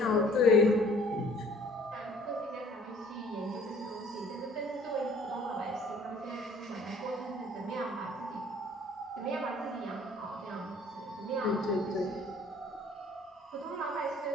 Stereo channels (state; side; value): normal; both; correlation 0.54